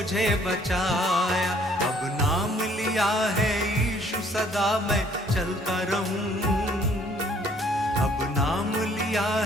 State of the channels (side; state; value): both; normal; correlation 0.61